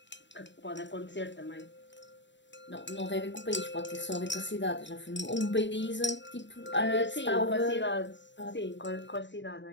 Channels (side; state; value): right; late; 0.53 ms